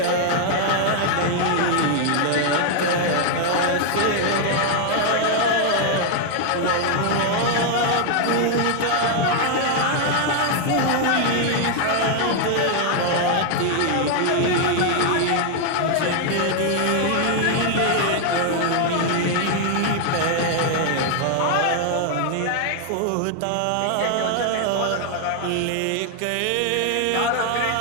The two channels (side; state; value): both; different; correlation 0.00